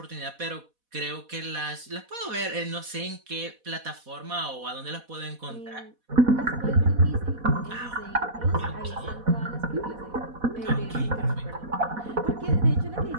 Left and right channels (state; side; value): late; left; 4.1 ms